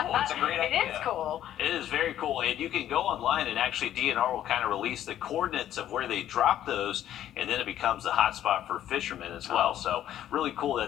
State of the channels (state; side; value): quieter; right; 11.7 dB